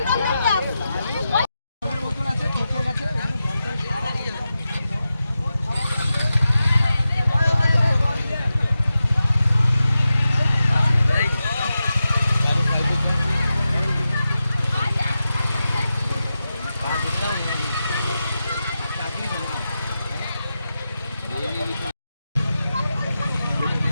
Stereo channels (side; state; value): both; inverted; correlation -0.91